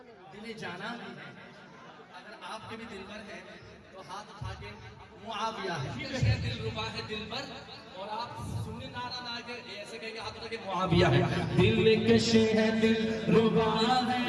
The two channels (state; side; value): identical; both; correlation 1.00